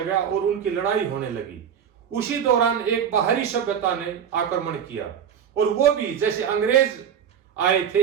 और उनकी लड़ाई होने लगी। उसी दौरान एक बाहरी सभ्यता ने आक्रमण किया और वो भी जैसे अंग्रेज आए थे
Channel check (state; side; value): quieter; left; 8.3 dB